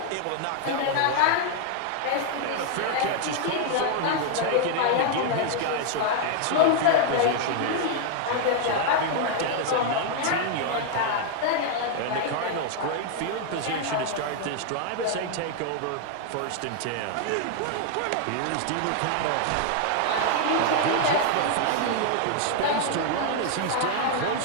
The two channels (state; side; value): different; both; correlation 0.00